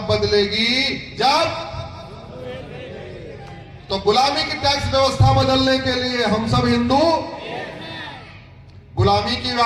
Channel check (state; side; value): identical; both; correlation 1.00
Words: बदलेगी? जब। तो गुलामी की टैक्स व्यवस्था बदलने के लिए हम सब हिंदू, गुलामी की